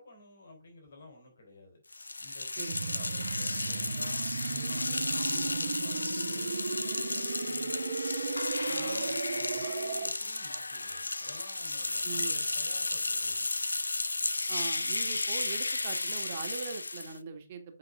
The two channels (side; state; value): both; inverted; correlation -0.91